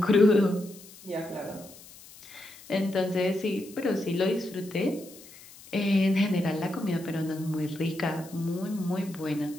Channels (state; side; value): noise; left; hiss, 20 dB below the sound